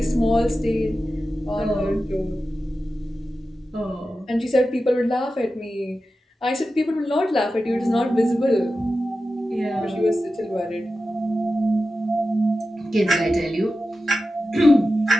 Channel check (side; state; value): both; normal; correlation 0.93